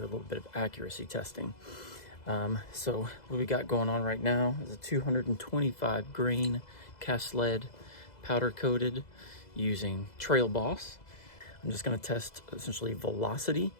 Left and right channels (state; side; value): late; right; 2.0 ms